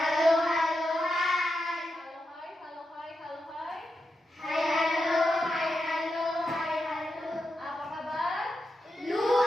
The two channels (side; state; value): both; normal; correlation 0.87